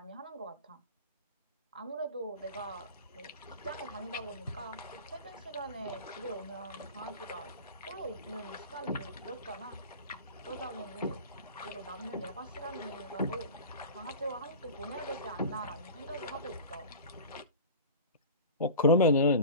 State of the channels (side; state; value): both; inverted; correlation -0.35